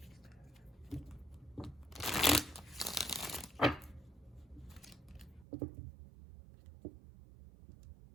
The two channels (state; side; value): drops out; left; at 5.5 s